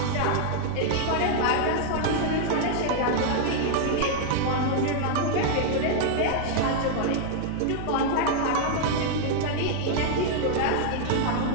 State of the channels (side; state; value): both; different; correlation 0.00